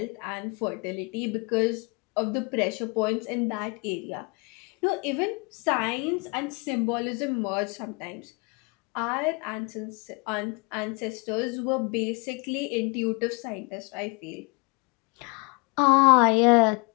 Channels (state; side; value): quieter; right; 29.6 dB